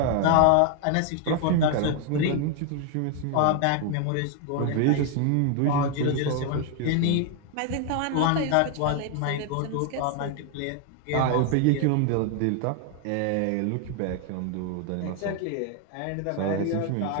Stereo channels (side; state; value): both; different; correlation 0.00